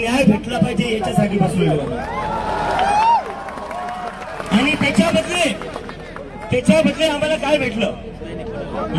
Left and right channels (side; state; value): both; identical; correlation 1.00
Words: भेटला पाहिजे याच्यासाठी बसलेलो. आणि त्याच्या बदले आम्हाला काय भेटलं?